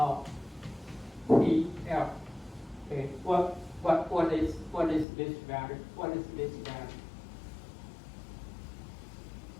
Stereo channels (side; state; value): right; drops out; at 5.1 s